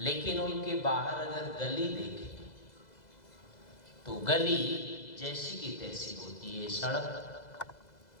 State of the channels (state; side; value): late; right; 2.0 ms